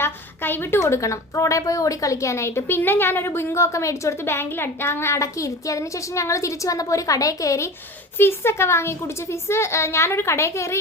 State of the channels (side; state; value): both; normal; correlation 0.34